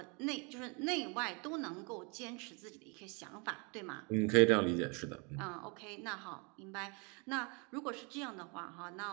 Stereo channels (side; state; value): left; quieter; 32.4 dB